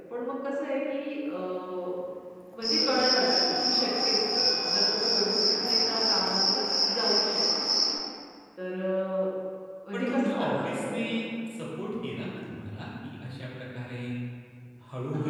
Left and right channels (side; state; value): both; identical; correlation 1.00